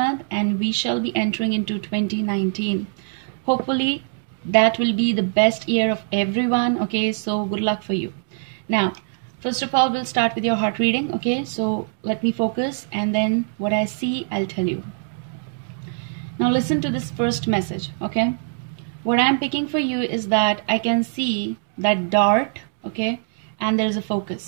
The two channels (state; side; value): silent; left; digital silence